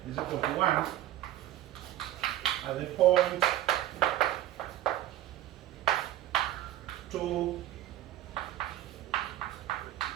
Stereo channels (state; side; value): quieter; left; 13.8 dB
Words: is equal to 1. at the point 2